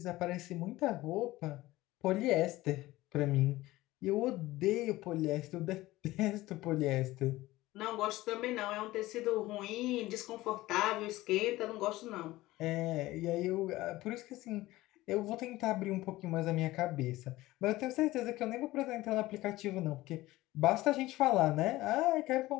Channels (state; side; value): quieter; right; 17.8 dB